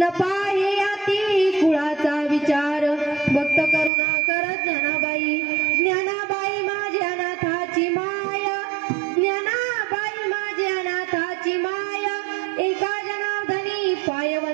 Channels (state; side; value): drops out; left; at 3.9 s